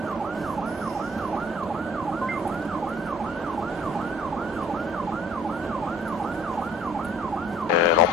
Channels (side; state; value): both; normal; correlation 0.54